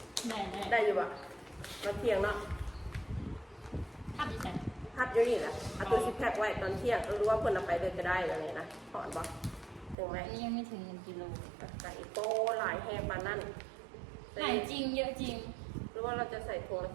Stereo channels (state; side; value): drops out; left; at 10.0 s